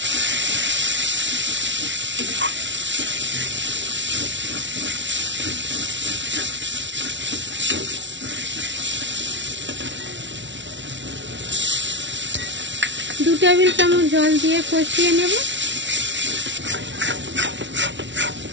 দু টেবিল চামচ জল দিয়ে কষিয়ে নেব।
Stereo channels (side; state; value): left; late; 0.54 ms